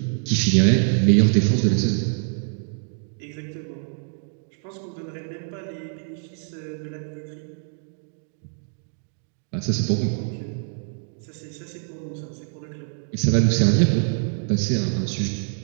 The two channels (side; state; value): left; silent; 62 dB below the other